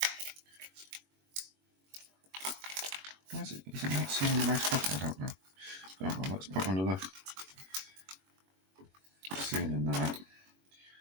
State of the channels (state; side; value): late; left; 21 ms